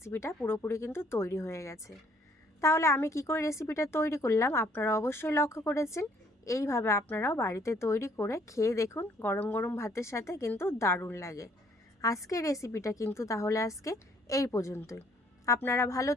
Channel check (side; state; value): both; normal; correlation 0.63